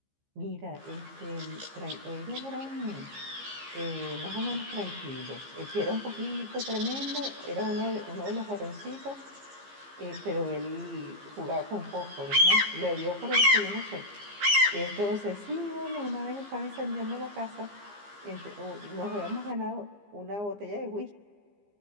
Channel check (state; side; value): late; left; 15 ms